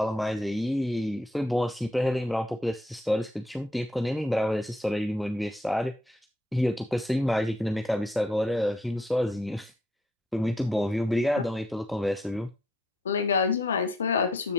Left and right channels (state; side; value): normal; both; correlation 0.71